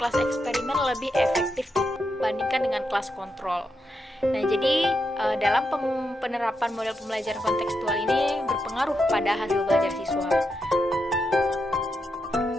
eksperimen lebih efektif dibandingkan dengan kelas kontrol. Nah, jadi dalam penerapan model pembelajaran kontekstual ini berpengaruh pada hasil belajar siswa.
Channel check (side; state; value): both; normal; correlation 0.84